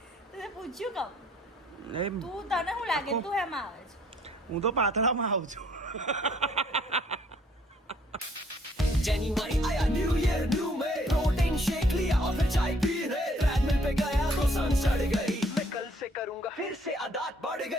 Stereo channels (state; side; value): normal; both; correlation 0.63